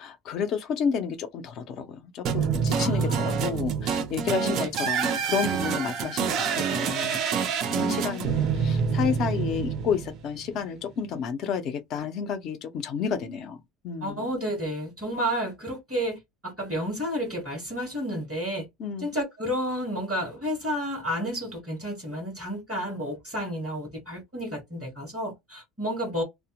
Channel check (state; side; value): normal; both; correlation 0.43